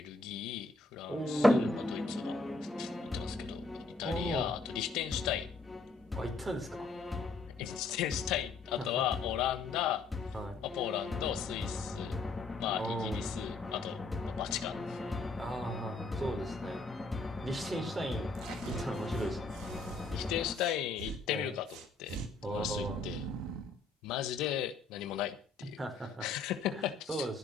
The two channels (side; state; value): right; quieter; 3.7 dB